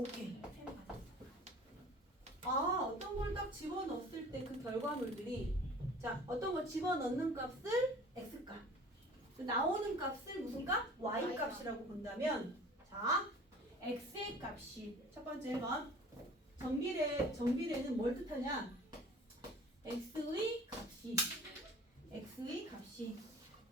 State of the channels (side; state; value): both; normal; correlation 0.45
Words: 3배가 됐어. 어떤 걸 딱 집어넣었을 때 그 결과물들이 자, 어떤 걸 집어넣는 값을 x값 나오는 값을 무슨 값? y값이라고 본다면 자, x의 값이 첫 번째 1번 정비례는 뭘 뜻하냐? x의 값이